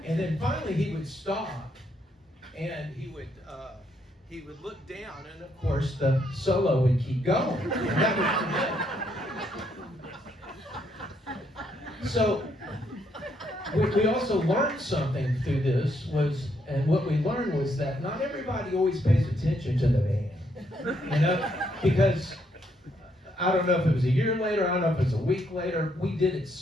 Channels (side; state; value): both; normal; correlation 0.74